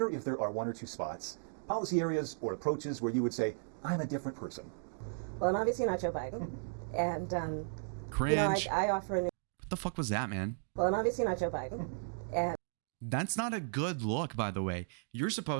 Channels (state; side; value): silent; left; digital silence